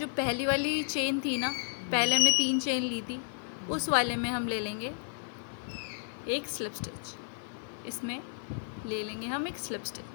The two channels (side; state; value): right; silent; digital silence